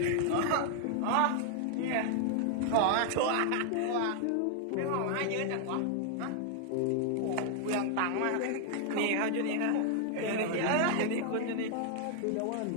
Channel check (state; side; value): different; both; correlation 0.00